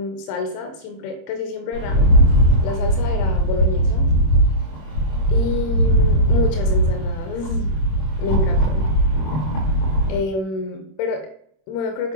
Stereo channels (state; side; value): late; right; 26 ms